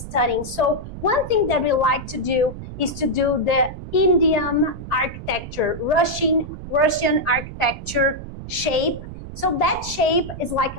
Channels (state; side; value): noise; right; rumble, 11 dB below the sound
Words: So one thing that we like to do is to do the Indian architecture, Russian architecture shape. So that shape is like